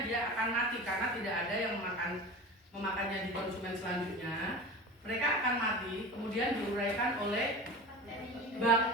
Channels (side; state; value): both; normal; correlation 0.32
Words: dia akan mati karena tidak ada yang memakannya di konsumen selanjutnya. Mereka akan mati, kemudian diuraikan oleh